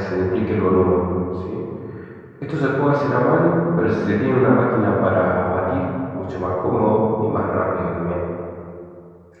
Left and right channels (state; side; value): identical; both; correlation 1.00